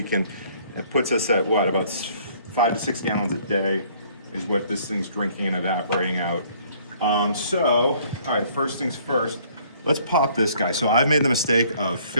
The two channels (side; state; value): both; inverted; correlation -0.59